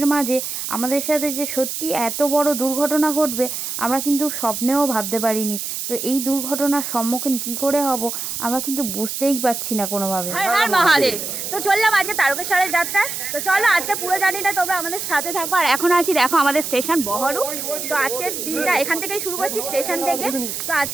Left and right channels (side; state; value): right; noise; hiss, 5 dB below the sound